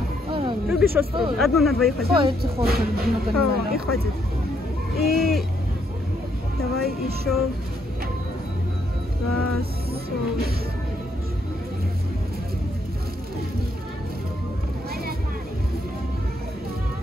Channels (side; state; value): both; normal; correlation 0.73